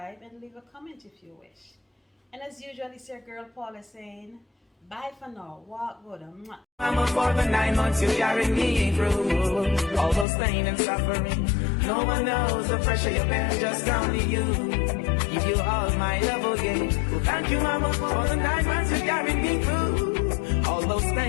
and leave a comment if you wish. And as usual, it's your girl Paula saying bye for now. Walk good. I'm up for the 9 months you carried me through all those pain and suffering. No one knows the pressure you bear, just only you. Give you all my love again. Well, thank you, Mama, for the 9 months you carried me through all those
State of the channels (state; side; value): drops out; right; at 10.2 s